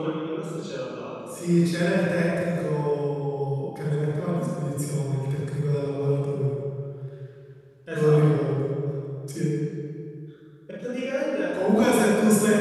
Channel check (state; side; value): identical; both; correlation 1.00